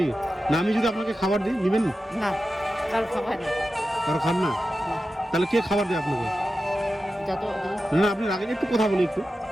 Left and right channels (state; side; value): normal; both; correlation 0.92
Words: না আমি যদি আপনাকে খাবার দিই নিবেন? না, কারো খাওয়াই না। কারো খান না? তাহলে কে খাবার দেয় আপনাকে? যা তো না আপনি রাখেন, একটু কথা বলি একটু।